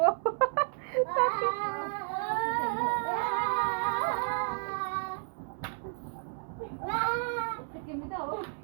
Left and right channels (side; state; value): left; silent; 57 dB below the other